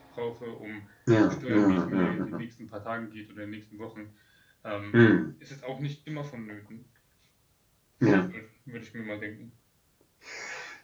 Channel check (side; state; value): both; identical; correlation 1.00